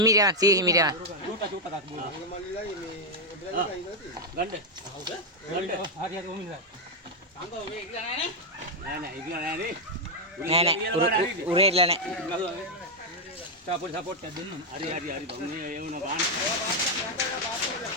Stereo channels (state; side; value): normal; both; correlation 0.01